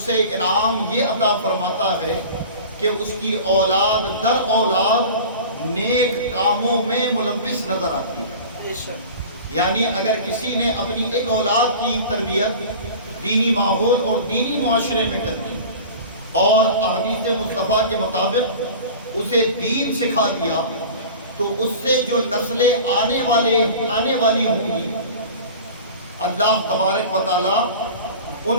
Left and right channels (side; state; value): both; inverted; correlation -0.37